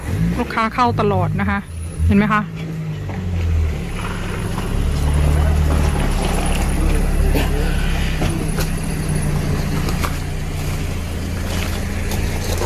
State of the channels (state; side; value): identical; both; correlation 1.00